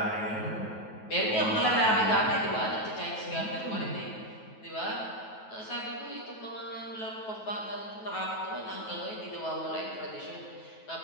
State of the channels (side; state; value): right; late; 9.3 ms